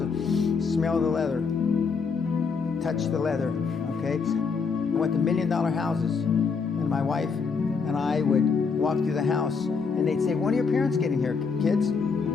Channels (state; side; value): quieter; right; 5.2 dB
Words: and smell the leather, touch the leather, okay? I went to $1 million houses, and my wife and I would walk through the house, and they'd say, when are your parents getting here, kids?